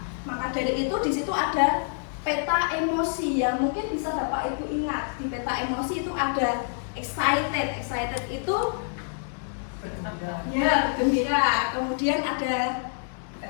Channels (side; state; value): right; silent; digital silence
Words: Maka dari itu di situ ada peta emosi yang mungkin bisa Bapak Ibu ingat. Di peta emosi itu ada excited itu ya gembira. Kemudian ada